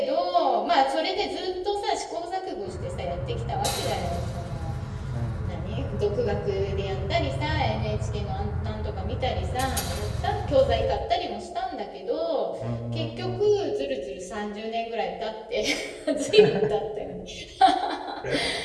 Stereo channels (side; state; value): both; identical; correlation 1.00